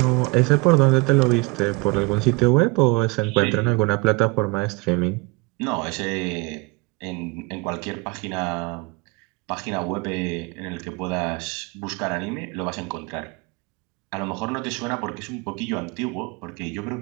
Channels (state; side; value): quieter; left; 26.0 dB